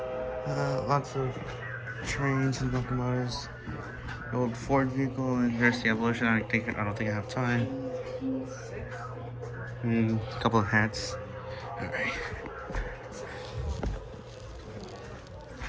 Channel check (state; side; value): identical; both; correlation 1.00